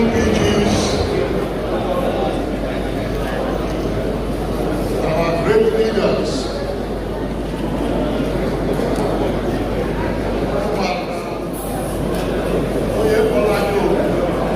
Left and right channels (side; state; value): both; identical; correlation 1.00